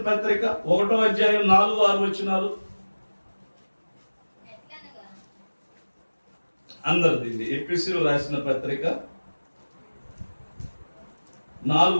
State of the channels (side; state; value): both; inverted; correlation -1.00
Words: పత్రిక 1వ అధ్యాయం 4-6 వచనాలు. అందరిది ఎఫెసీయులకు రాసిన పత్రిక